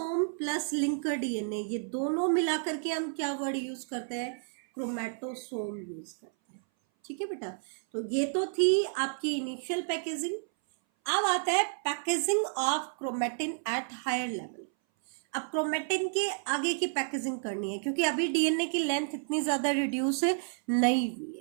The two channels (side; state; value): left; silent; 57 dB below the other